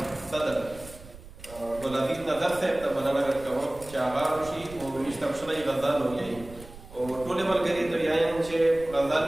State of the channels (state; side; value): noise; right; rumble, 18 dB below the sound